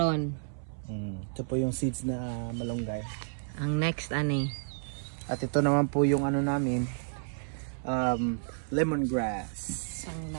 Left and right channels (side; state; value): left; silent; 57 dB below the other